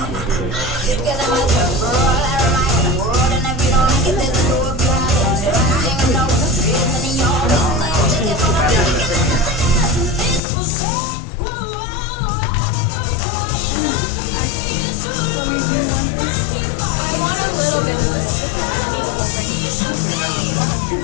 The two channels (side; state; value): right; drops out; at 10.4 s